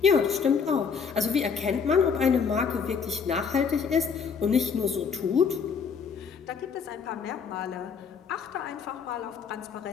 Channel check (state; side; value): quieter; right; 6.1 dB